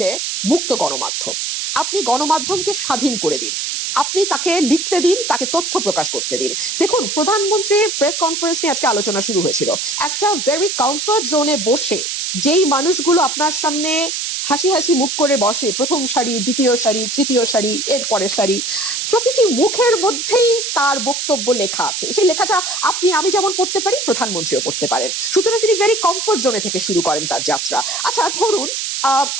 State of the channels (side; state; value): right; noise; hiss, 2 dB below the sound